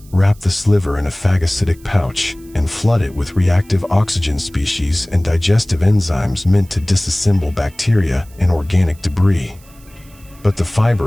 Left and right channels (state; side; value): noise; right; hiss, 27 dB below the sound